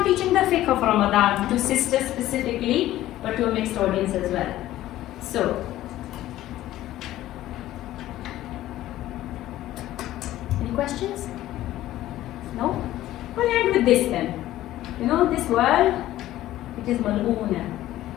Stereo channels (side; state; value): right; quieter; 14.5 dB